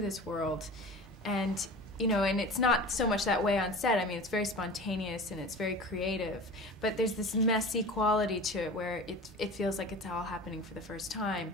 world. And you know, and it's not so much that way on set. I mean, it's very spontaneous and it's very creative, but there's this messy quality to it where it feels like it's all happening for the first time.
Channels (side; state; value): both; normal; correlation 0.36